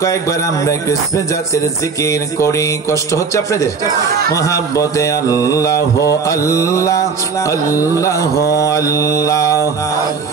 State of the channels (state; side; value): quieter; left; 5.3 dB